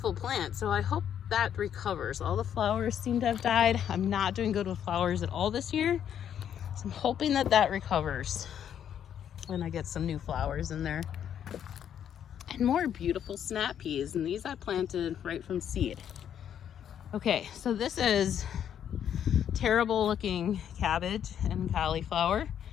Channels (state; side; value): quieter; right; 9.3 dB